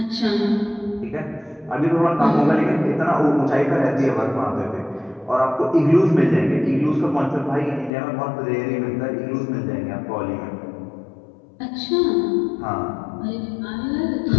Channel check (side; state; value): right; drops out; at 7.9 s